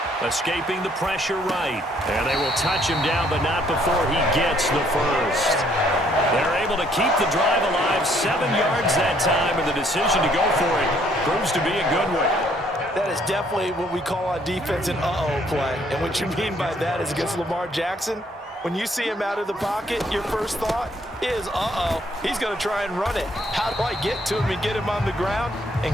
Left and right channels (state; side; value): normal; both; correlation 0.65